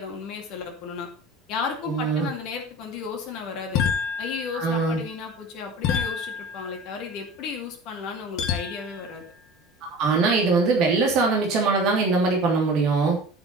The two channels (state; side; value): normal; both; correlation 0.38